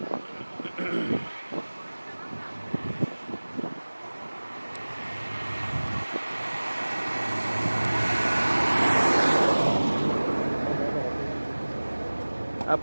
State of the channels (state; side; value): inverted; both; correlation -1.00